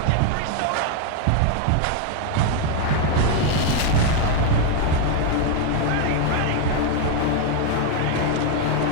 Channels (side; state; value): both; different; correlation 0.01